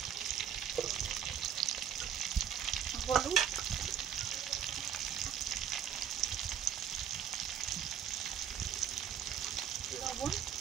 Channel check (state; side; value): quieter; left; 8.8 dB